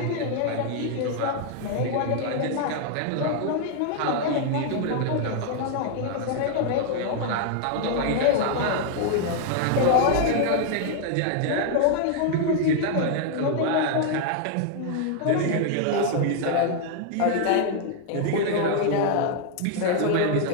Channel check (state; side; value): different; both; correlation 0.00